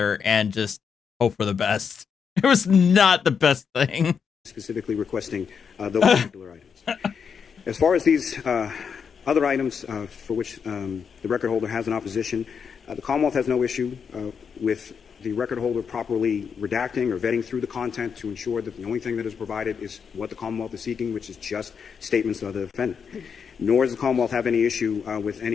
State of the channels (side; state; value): right; quieter; 6.5 dB